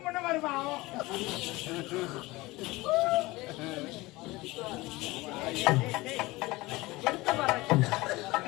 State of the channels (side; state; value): right; quieter; 20.9 dB